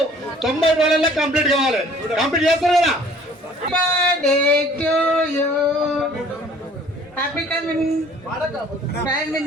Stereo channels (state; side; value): normal; both; correlation 0.54